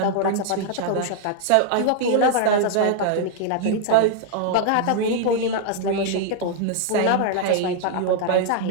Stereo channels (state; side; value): different; both; correlation -0.01